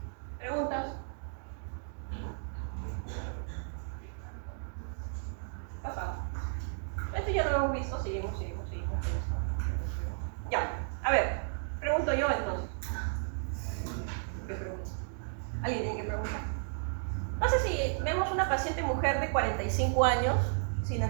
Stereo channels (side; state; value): left; silent; digital silence